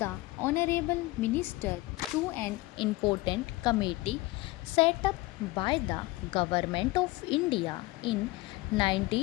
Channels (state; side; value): quieter; right; 20.4 dB